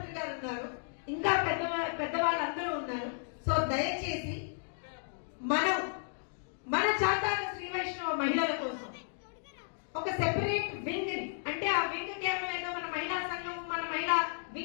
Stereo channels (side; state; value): right; silent; digital silence